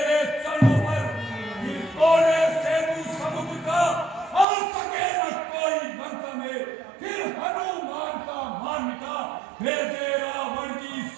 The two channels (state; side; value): drops out; left; at 4.5 s